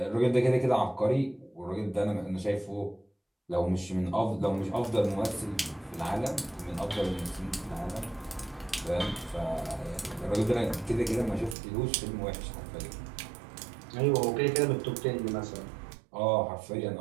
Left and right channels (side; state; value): left; drops out; at 11.6 s